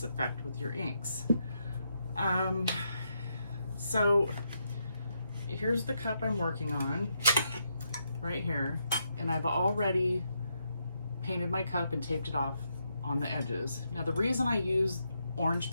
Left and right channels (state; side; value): inverted; both; correlation -0.80